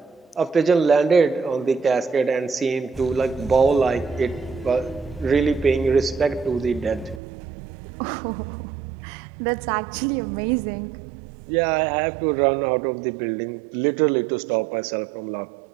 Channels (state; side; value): drops out; left; at 7.2 s